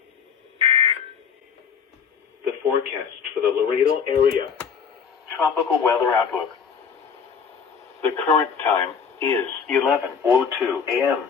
The forecast for the Laredo area. Tropical weather outlook. The current time is 11:02 a.m.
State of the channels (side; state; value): right; quieter; 6.5 dB